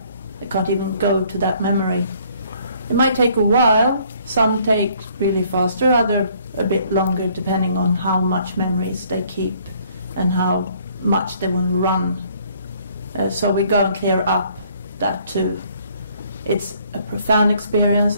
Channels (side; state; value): both; inverted; correlation -0.62